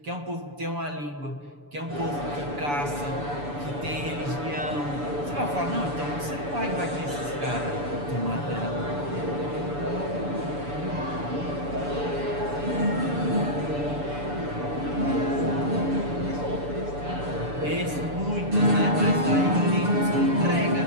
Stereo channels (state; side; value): late; left; 6.9 ms